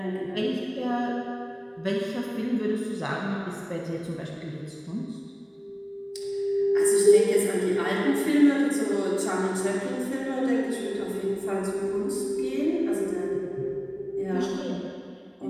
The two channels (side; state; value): both; identical; correlation 1.00